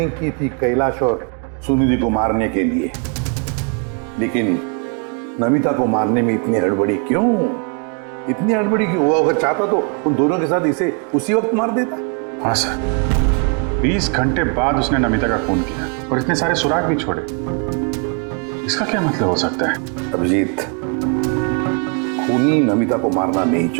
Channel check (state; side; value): quieter; left; 37.6 dB